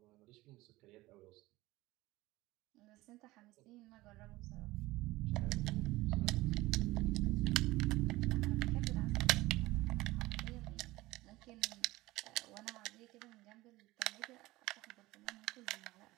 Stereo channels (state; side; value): quieter; left; 19.0 dB